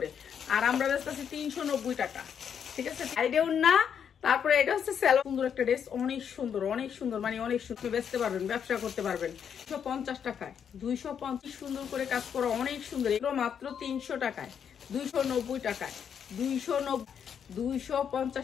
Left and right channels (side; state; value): right; quieter; 7.9 dB